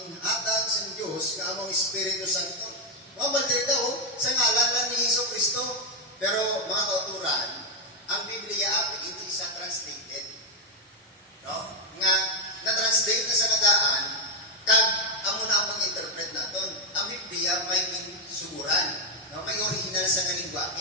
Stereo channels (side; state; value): both; normal; correlation 0.01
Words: sa Dios nga among Espiritu Santo. Mabal diri daw sa ngalan lang ni Jesucristo. Pero mga kauturan, ang Biblia api hindi isa translated. No? Nga na-translate na sa nadaan, kag amo na ang interpret naton. Ang Biblia may suguran, no? May original sa